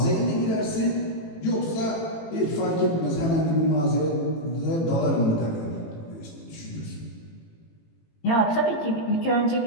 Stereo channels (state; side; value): late; right; 18 ms